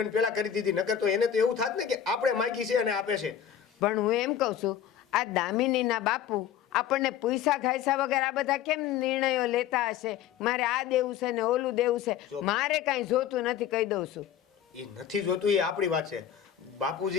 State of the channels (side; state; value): right; quieter; 9.6 dB